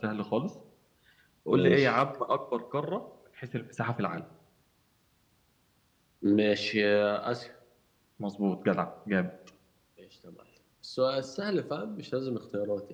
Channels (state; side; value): identical; both; correlation 1.00